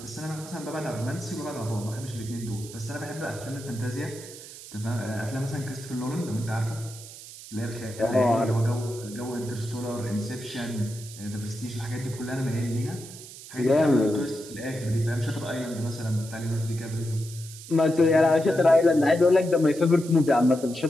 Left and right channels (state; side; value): noise; right; hiss, 15 dB below the sound